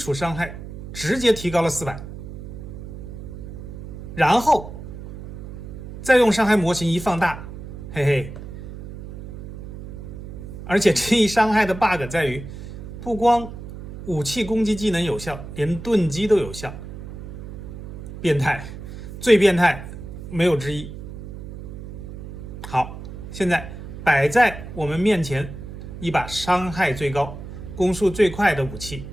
傷害直接提高了400，然後再用傷害模型一放大，嘿嘿。而且这一傷害的 bug 在於，不光武器攻擊技能有效，連盾擊都有效，變態，最變態，沒有之一。好，現在擺在我們面前一把傷害最高、攻速最快的武器，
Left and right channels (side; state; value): right; noise; hum, 11 dB below the sound